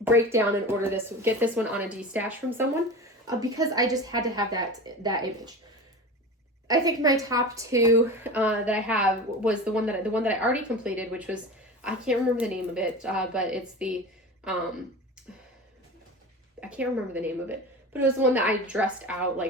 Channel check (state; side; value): normal; both; correlation 0.31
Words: break down and order this, get this one on a D-Stash from someone because I just had to have that image. I think my top 2 that I have was the one that I already completed, which was, I can't remember the name of it, but it's the I can't remember the name of it, but it was the one that I dressed out